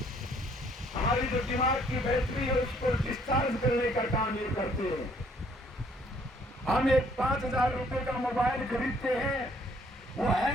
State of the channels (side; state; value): both; normal; correlation 0.63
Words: हमारी जो दिमाग की बैटरी है उसको डिस्चार्ज करने का काम ये करते हैं। हम एक 5,000 रुपए का मोबाइल खरीदते हैं, वो